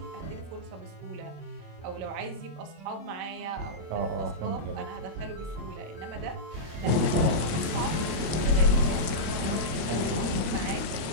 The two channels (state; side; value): late; left; 26 ms